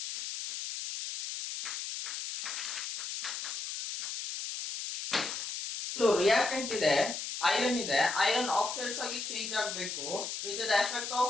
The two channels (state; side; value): noise; left; hiss, 5 dB below the sound